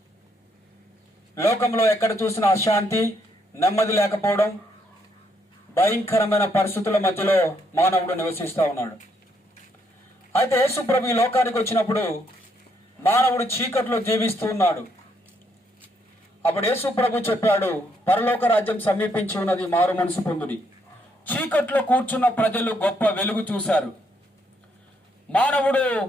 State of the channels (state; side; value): normal; both; correlation 0.73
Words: లోకంలో ఎక్కడ చూసిన అశాంతి, నెమ్మది లేకపోవడం, భయంకరమైన పరిస్థితుల మధ్యలో మానవుడు నివసిస్తూ ఉన్నాడు. అయితే యేసు ప్రభు ఈ లోకానికి వచ్చినప్పుడు మానవుడు చీకట్లో జీవిస్తూ ఉన్నాడు. అప్పుడు యేసు ప్రభు చెప్పాడు, పరలోక రాజ్యం సమీపించి ఉన్నది, మారు మనసు పొందుడి. చీకట్లో కూర్చున్న ప్రజలు గొప్ప వెలుగు చూశారు. మానవుడు